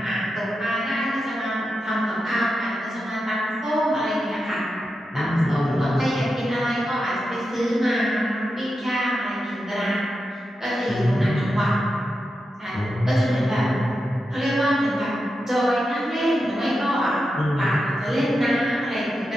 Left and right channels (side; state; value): both; normal; correlation 0.89